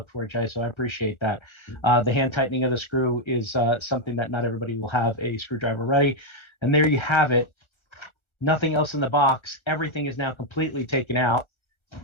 for, Jay, so I appreciate that. The hand tightening of the screw is something that not everybody will have a screwdriver ready. And there you have it. Nothing else in the box. Everything is now completely taken out.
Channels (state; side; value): late; right; 1.4 ms